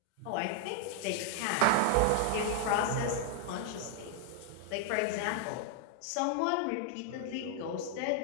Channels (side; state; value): both; different; correlation 0.00